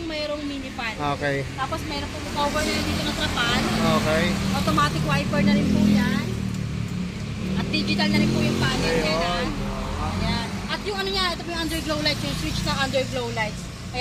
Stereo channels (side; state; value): both; identical; correlation 1.00